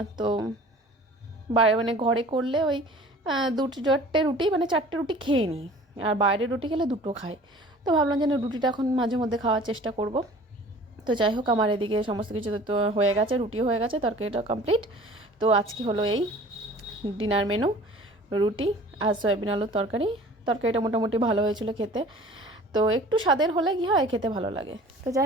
তো মানে ঘরে করলে ওই 2-4টে রুটি, মানে 4টে রুটি খেয়ে নিই, আর বাইরের রুটি খেলে 2টো খাই। তো ভাবলাম যে না, রুটিটা এখন মাঝে মধ্যে খাওয়ার চেষ্টা করব। তো যাই হোক, আমার এদিকে সমস্ত কিছু তো হয়ে গেছে, রুটিও হয়ে গেছে, তরকারিটা কমপ্লিট। তো আজকে হলো এই ডিনার মেনু, রুটি আর সয়াবিন আলুর তরকারি। তরকারিটা মোটামুটি ভালো হয়েছিল খেতে, তো একটু স্বাদের হলে কী হয়, খেতে ভালো লাগে। তো যাই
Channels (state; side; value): normal; both; correlation 0.46